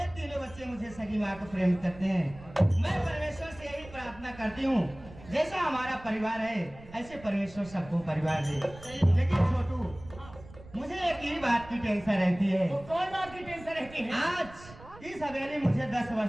तीनों बच्चे मुझे सगी माँ को प्रेम करते हैं। मैं परमेश्वर से यही प्रार्थना करती हूँ, जैसा हमारा परिवार है ऐसे परमेश्वर सबको परिवार दे। लेकिन छोटू मुझे एक ही बात की टेंशन रहती है। तो कौन बात की टेंशन रहती है? आज इस हवेली मुझे 10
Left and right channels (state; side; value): noise; right; rumble, 19 dB below the sound